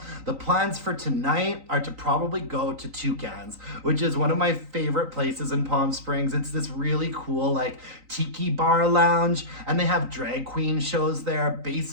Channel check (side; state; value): left; late; 3.9 ms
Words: The plans for tonight are to probably go to Toucans, which is one of my favorite places in Palm Springs. Springs. It's this really cool like tiki bar lounge, and they have drag queen shows there